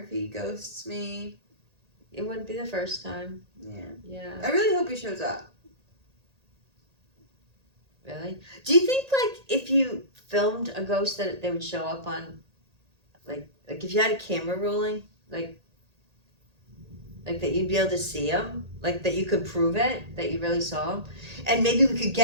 he ghosts me. It wouldn't be the first time. Yeah. Yeah. I really hope he shows up. Really? Do you think, like, if you filmed a ghost that they would show up on, like if you had a camera rolling, like that you'd be able to see him? Like, that you could prove it, that you really saw him? And maybe we could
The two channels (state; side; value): late; left; 1.8 ms